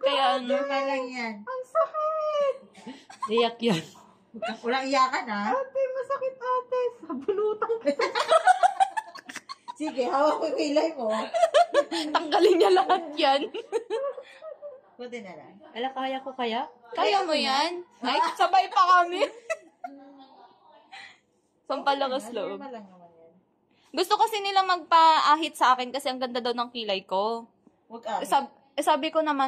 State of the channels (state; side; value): identical; both; correlation 1.00